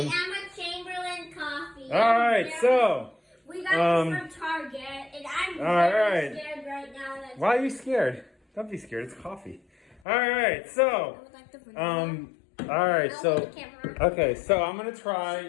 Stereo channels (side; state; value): right; drops out; at 10.0 s